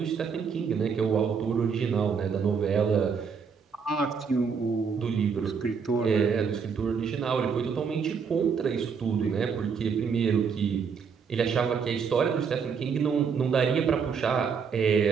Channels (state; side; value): quieter; left; 6.1 dB